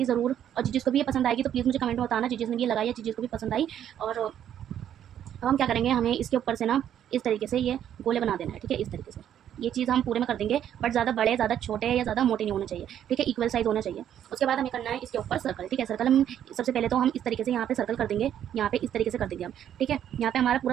ज़रूर। और जिसको भी ये पसंद आएगी तो प्लीज़ मुझे कमेंट में बताना, जिसने ये लगाई है, जिसको भी पसंद आई। और अब हम क्या करेंगे, हमें इसके ऊपर से ना इस तरीके से ये गोले बना देना है, ठीक है। इस तरीके से ये चीज़ हम पूरे में कर देंगे, बट ज़्यादा बड़े, ज़्यादा छोटे या ज़्यादा मोटे नहीं होने चाहिए, ठीक है। इक्वल साइज़ होना चाहिए। उसके बाद हमें करना है इसके ऊपर सर्कल, ठीक है। सर्कल हम सबसे पहले तो हम इस तरीके से यहाँ पे सर्कल कर देंगे, यहाँ पे इस तरीके से कर देंगे हम, ठीक है। यहाँ पे हमारा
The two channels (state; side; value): quieter; left; 10.2 dB